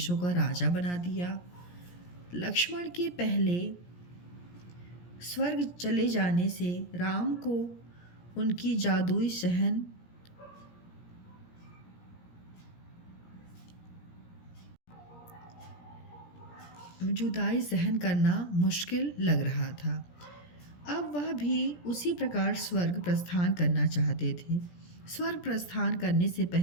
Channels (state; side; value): late; right; 17 ms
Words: का राजा बना दिया। लक्ष्मण के पहले स्वर्ग चले जाने से राम को उनकी जादुई जुदाई सहन करना मुश्किल लग रहा था। अब वह भी उसी प्रकार स्वर्ग प्रस्थान करना चाहते थे। स्वर्ग प्रस्थान करने से